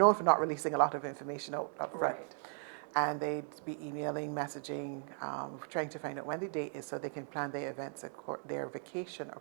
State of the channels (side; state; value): left; silent; 53 dB below the other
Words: for not releasing a lot of information up front. Right. And they'd be emailing, messaging, trying to find out when the date is so they can plan their events, their vacation